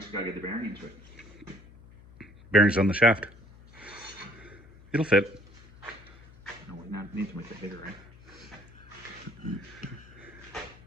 gotta get the bearing into it. Bearings on the shaft. It'll fit. No, we need to make the header, right?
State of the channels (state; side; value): noise; left; hum, 22 dB below the sound